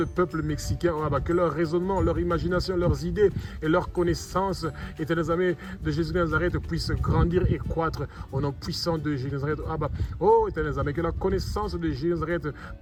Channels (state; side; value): identical; both; correlation 1.00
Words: peuple mexicain. Que leur raisonnement, leur imagination, leurs idées et leurs connaissances, éternels amis de Jésus de Nazareth, puissent grandir et croître au nom puissant de Jésus de Nazareth. Éternels amis, que la connaissance de Jésus de Nazareth